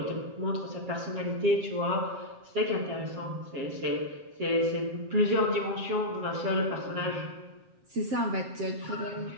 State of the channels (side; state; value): left; late; 7.5 ms